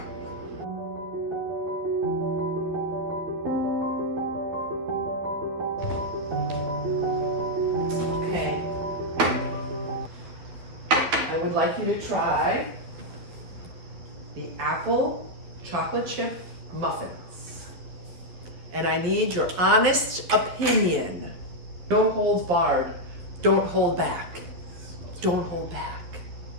Okay. I would like you to try the apple chocolate chip muffins. And I need your honest opinion. No holds barred. Don't hold back. Don't hold back.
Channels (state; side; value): late; left; 12 ms